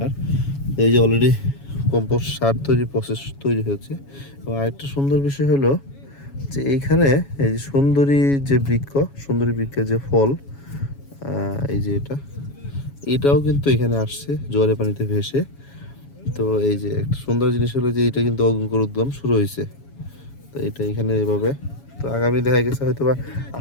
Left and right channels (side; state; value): right; late; 7.2 ms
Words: এই যে অলরেডি কম্পোস্ট সার তৈরির প্রসেস তৈরি হচ্ছে। এবং আরেকটা সুন্দর বিষয় হলো যে এইখানে এই যে সুন্দরী বৃক্ষের যে ফল, এই যে এটাও কিন্তু এখানে আসছে জোয়ারের পানিতে ভেসে। তো এই যে একটা সুন্দর জিনিস হলো যে এটা কিন্তু অঙ্কুরোদ্গম শুরু হয়েছে। তো এটা এখানে এভাবে, তো আগামী দেখা গেছে হয়তো বা